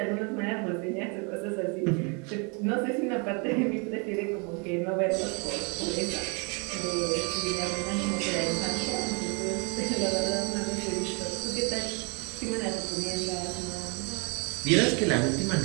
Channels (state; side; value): quieter; left; 33.5 dB